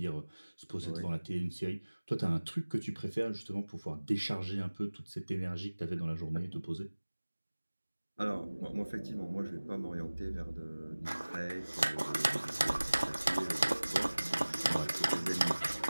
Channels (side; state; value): both; inverted; correlation -1.00